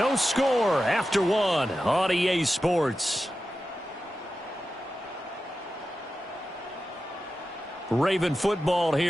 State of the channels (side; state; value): both; normal; correlation 0.92